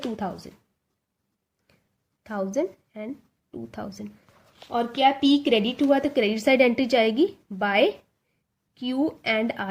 2000, 1000 एंड 2000। और क्या पी क्रेडिट हुआ तो क्रेडिट साइड एंट्री जाएगी बाय क्यू एंड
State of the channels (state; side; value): identical; both; correlation 1.00